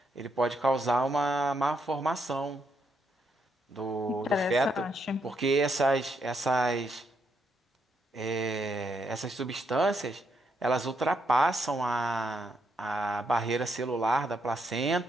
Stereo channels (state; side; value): normal; both; correlation 0.77